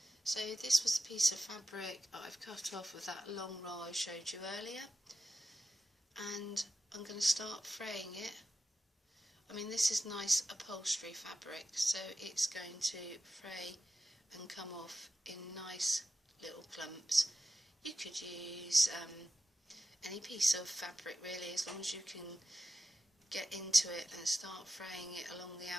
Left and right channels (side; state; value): both; normal; correlation 0.91